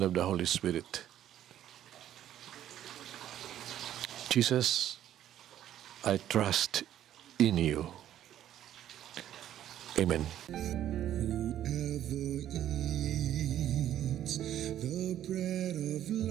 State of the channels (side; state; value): left; quieter; 11.6 dB